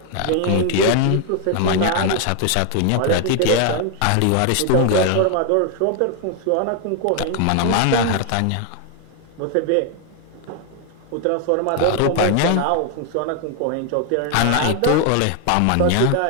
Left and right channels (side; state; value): both; different; correlation 0.01